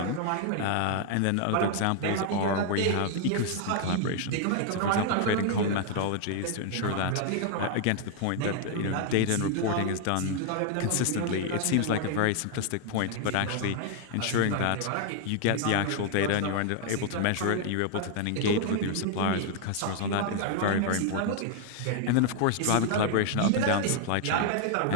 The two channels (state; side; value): different; both; correlation 0.00